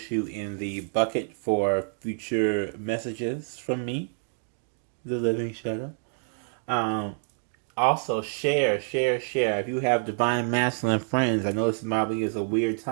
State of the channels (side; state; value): left; silent; 57 dB below the other